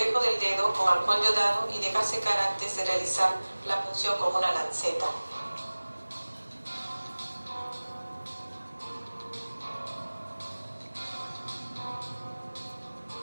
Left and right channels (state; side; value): inverted; both; correlation -1.00